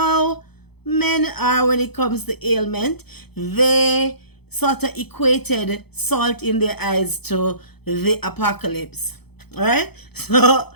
men are when it comes to ailment. They sort of equated salt in their eyes to the apocalypse. Alright? So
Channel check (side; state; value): right; late; 0.98 ms